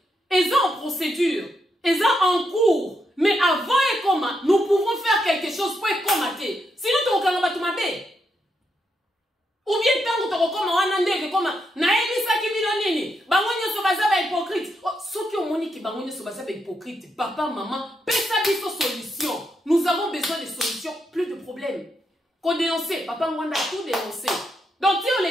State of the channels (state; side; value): normal; both; correlation 0.81